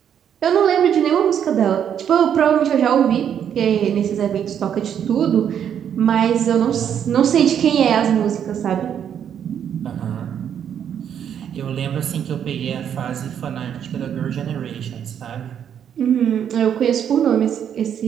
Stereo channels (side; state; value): left; quieter; 8.8 dB